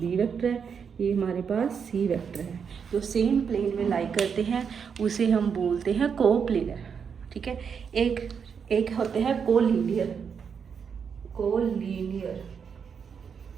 वेक्टर है, ये हमारे पास सी वेक्टर है, जो सेम प्लेन में लाई करते हैं उसे हम बोलते हैं को प्लेनर, ठीक है। एक होते हैं कोलिनियर,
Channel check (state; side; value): quieter; left; 6.7 dB